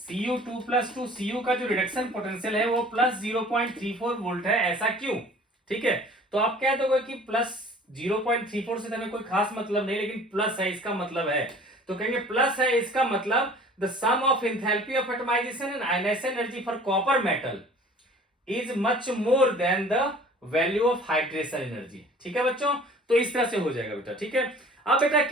Cu2+2, Cu का जो रिडक्शन पोटेंशियल है वो +0.34 वोल्ट है, ऐसा क्यों, ठीक है। तो आप कह दोगे कि +0.34 से हमें कोई खास मतलब नहीं, लेकिन प्लस है इसका मतलब है, तो कहेंगे प्लस है इसका मतलब the sum of enthalpy of atomisation and ionisation energy for copper metal is much more than the value of hydration energy, ठीक है बच्चों। तो इस तरह से हो जाएगा बेटा, ठीक है। अब बेटा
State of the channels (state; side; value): normal; both; correlation 0.48